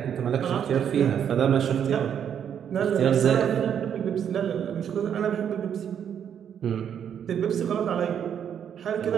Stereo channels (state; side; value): quieter; left; 8.6 dB